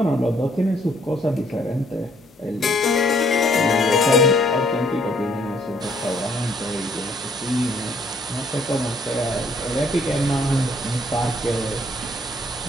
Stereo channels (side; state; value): both; normal; correlation 0.65